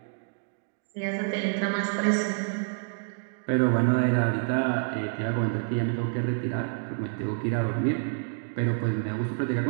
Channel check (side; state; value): left; silent; digital silence